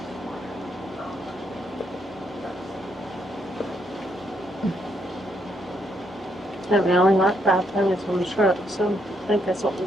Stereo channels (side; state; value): both; normal; correlation 0.75